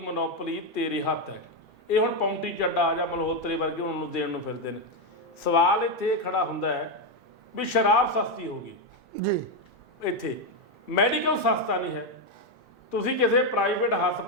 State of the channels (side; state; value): both; normal; correlation 0.06